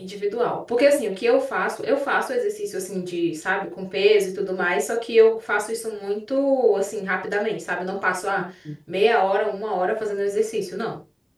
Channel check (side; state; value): both; identical; correlation 1.00